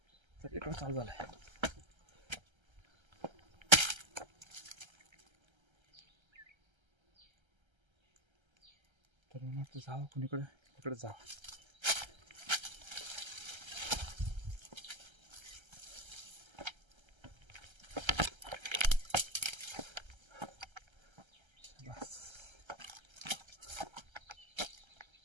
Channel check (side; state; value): left; late; 1.3 ms